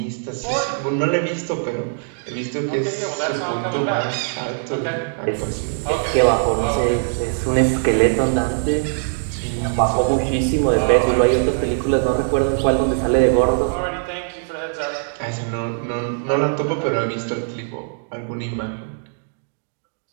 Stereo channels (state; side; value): silent; left; digital silence